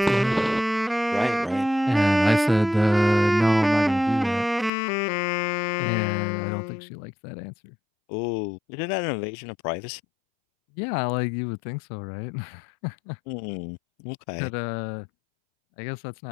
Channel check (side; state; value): right; drops out; at 4.7 s